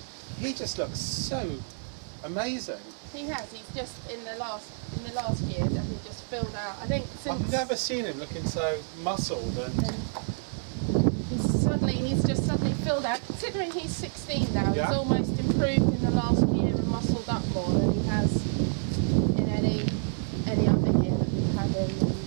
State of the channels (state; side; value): silent; left; 59 dB below the other